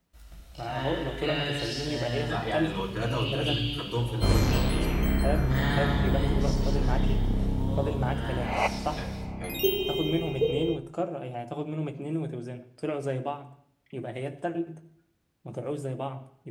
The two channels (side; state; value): both; identical; correlation 1.00